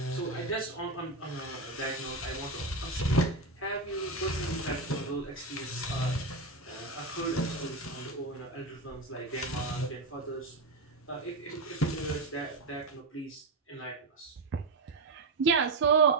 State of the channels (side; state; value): left; quieter; 3.2 dB